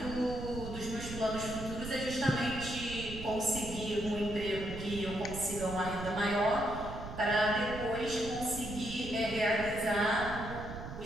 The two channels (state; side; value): noise; right; rumble, 9 dB below the sound